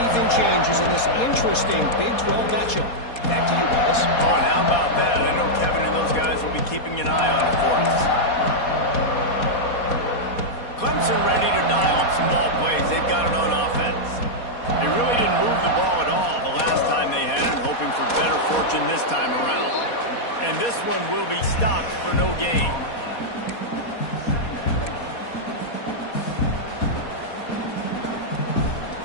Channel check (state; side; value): late; right; 4.2 ms